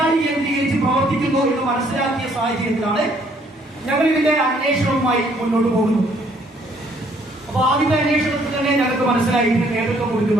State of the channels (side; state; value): both; normal; correlation 0.65